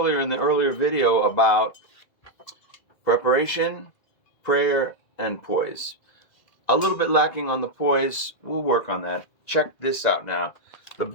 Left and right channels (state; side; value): late; right; 2.0 ms